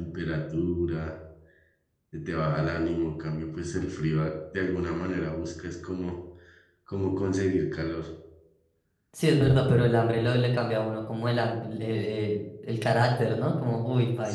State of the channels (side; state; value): both; identical; correlation 1.00